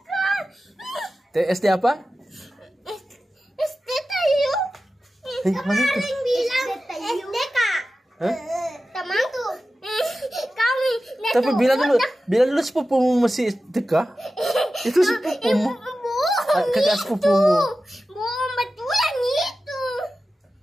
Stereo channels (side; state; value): both; normal; correlation 0.94